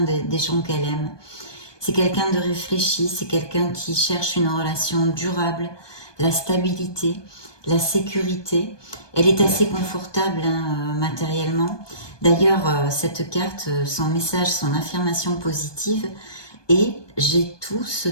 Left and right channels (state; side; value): late; right; 1.2 ms